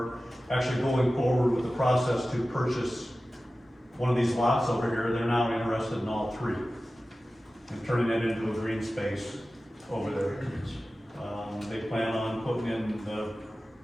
actually going forward with the process to purchase one of these lots over here. They're now interested in all 3, and turning it into a green space over there. They plan on putting in the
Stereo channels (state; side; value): normal; both; correlation 0.95